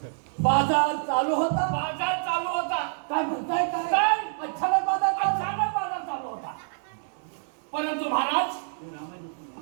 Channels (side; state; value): left; silent; 60 dB below the other